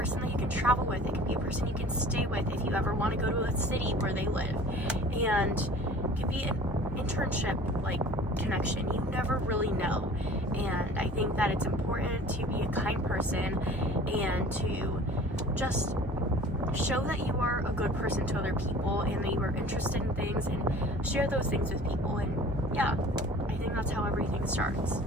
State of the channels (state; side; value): normal; both; correlation 0.45